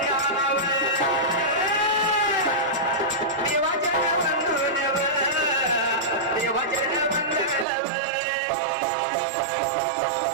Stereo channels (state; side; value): drops out; left; at 7.7 s